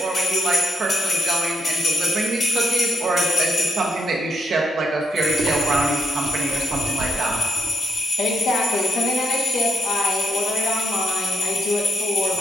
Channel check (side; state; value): both; normal; correlation 0.80